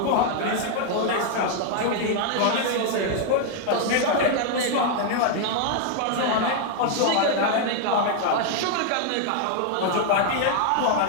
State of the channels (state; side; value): different; both; correlation 0.00